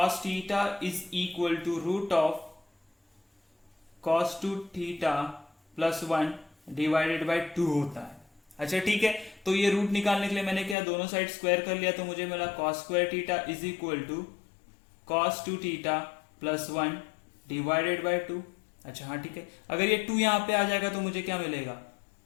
theta is equal to root of cos 2 theta plus 1 divided by 2 होता है। अच्छा ठीक है, तो ये रूट निकालने के लिए मैंने क्या दोनों साइड स्क्वायर कर लिया, तो मुझे मिला cos square theta is equal to cos 2 theta plus 1 divided by 2। अच्छा हाँ ठीक है, अगर ये 2 यहाँ पे आ जाएगा तो मुझे क्या मिलेगा,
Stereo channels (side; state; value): right; drops out; at 10.8 s